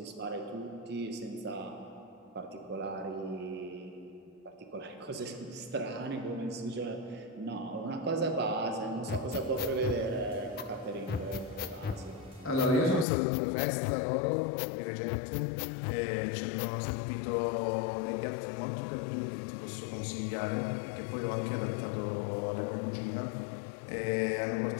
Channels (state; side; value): drops out; right; at 13.1 s